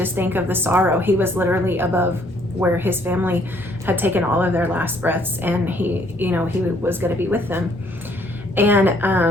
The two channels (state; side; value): normal; both; correlation 0.65